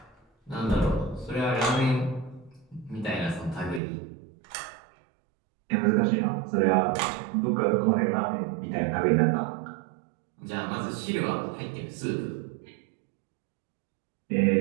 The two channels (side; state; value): left; drops out; at 3.8 s